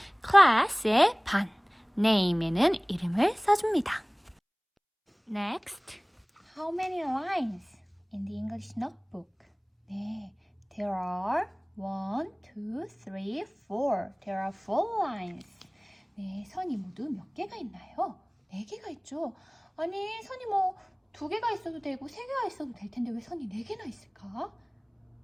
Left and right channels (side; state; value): both; identical; correlation 1.00